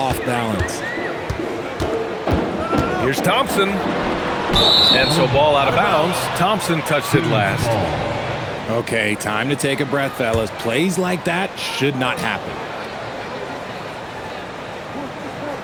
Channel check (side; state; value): both; identical; correlation 1.00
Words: balance. Here's Thompson. And so ball out of bounds. Thompson touched it last. Okay, time to take a breath, fellas. Plays like that should not happen.